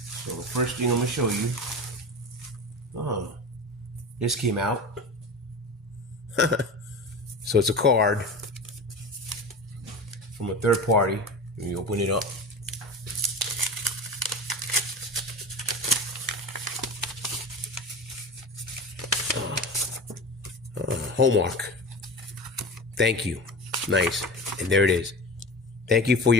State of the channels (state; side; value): normal; both; correlation 0.30